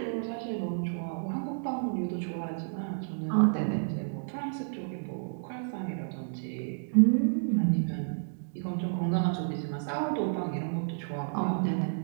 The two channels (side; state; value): left; silent; digital silence